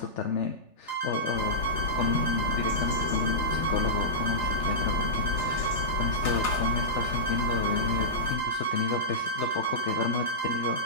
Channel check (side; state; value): right; late; 3.4 ms